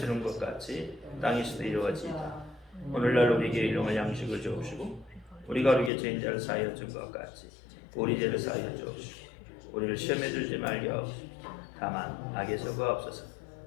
이룬 것 같이 땅에서도 이루어지이다. 오늘날 우리에게 일용할 양식을 주옵시고 우리가 우리에게 죄인자를 사하여 준 것 같이 우리 죄를 사하여 주옵시고 우리를 시험에 들지 말게 하옵시고 다만 악에서 구하옵소서.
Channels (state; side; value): drops out; right; at 5.9 s